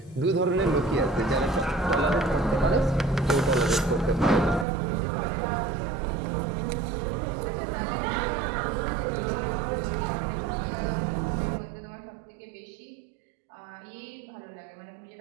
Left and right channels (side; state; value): left; drops out; at 4.7 s